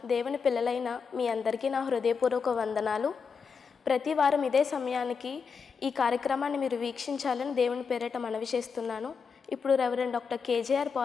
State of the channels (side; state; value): right; quieter; 5.7 dB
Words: దేవుని పిల్లలైన మీ అందరికీ నా హృదయపూర్వక వందనాలు. ప్రతి వారం ఇదే సమయానికి ఈ కార్యక్రమాన్ని మీరు వీక్షించాలని దేవుని పేరిట మనవి చేస్తున్నాను. ఇప్పుడు రెవరెండ్ డాక్టర్ కేజేఆర్